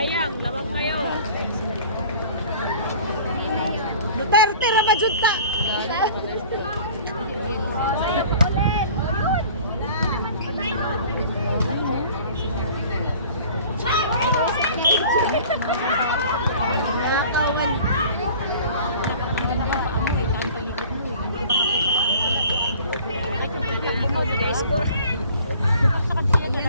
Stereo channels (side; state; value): both; inverted; correlation -0.47